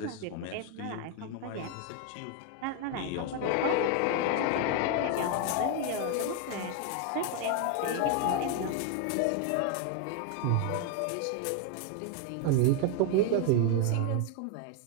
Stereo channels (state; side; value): different; both; correlation 0.01